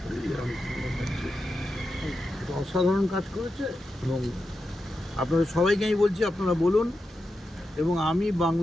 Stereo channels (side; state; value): both; normal; correlation 0.89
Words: করি অসাধারণ কাজ করেছে এবং আপনাদের সবাইকে আমি বলছি, আপনারা বলুন। এবং আমি